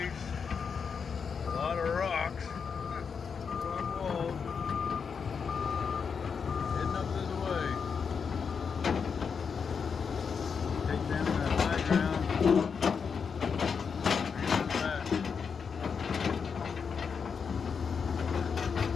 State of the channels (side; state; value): right; quieter; 6.1 dB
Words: a lot of rocks, rock walls, heading up this way. Take down that high ground, bring it back.